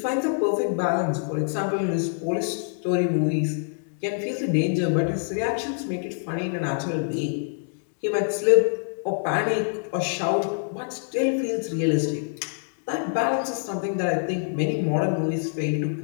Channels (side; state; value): right; silent; digital silence